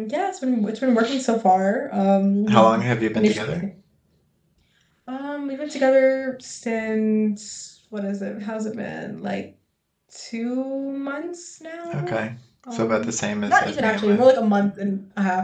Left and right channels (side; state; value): both; identical; correlation 1.00